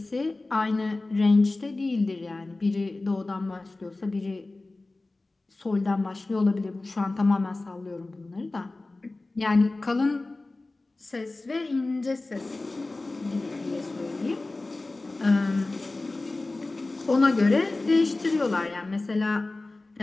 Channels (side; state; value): right; quieter; 3.1 dB